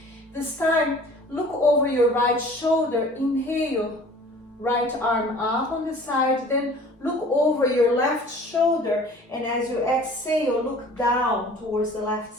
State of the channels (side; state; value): both; normal; correlation 0.47